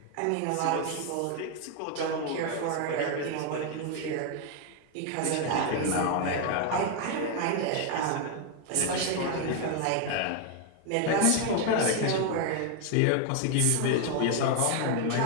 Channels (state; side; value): different; both; correlation 0.01